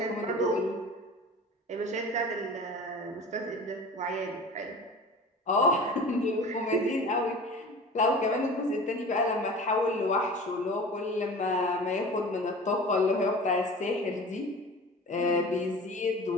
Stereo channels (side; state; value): both; normal; correlation 0.38